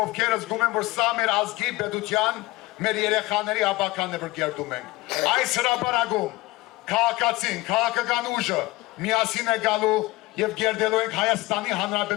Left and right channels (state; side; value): quieter; right; 20.4 dB